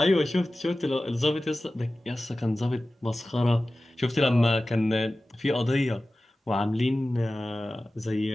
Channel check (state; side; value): normal; both; correlation 0.96